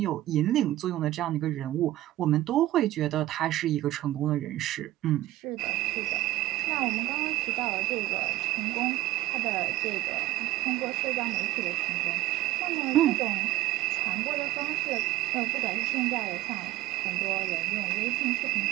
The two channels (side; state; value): left; quieter; 15.7 dB